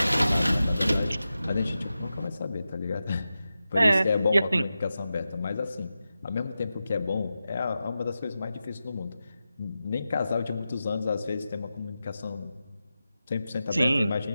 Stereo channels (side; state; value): both; inverted; correlation -0.92